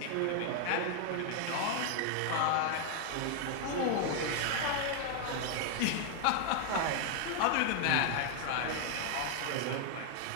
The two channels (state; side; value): different; both; correlation 0.00